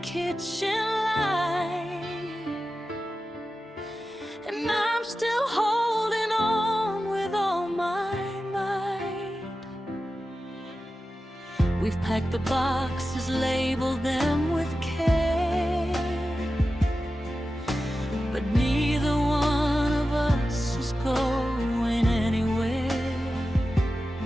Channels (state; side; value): normal; both; correlation 0.93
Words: light, and I'm still holding on with all my might. We've packed the boxes, labeled them with care, but neither one of us is going anywhere.